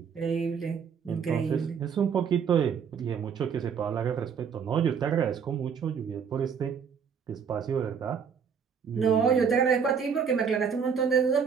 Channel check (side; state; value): left; quieter; 6.7 dB